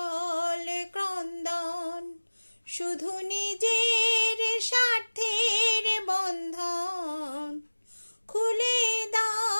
ক্রন্দন, শুধু নিজের স্বার্থের বন্ধন। খুলে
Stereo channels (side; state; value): both; inverted; correlation -1.00